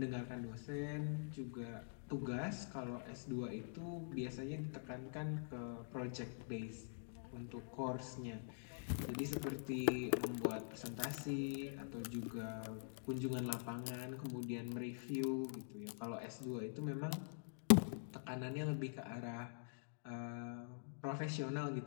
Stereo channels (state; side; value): silent; right; digital silence